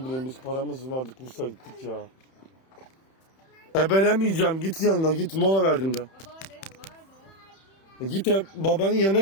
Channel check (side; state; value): right; late; 31 ms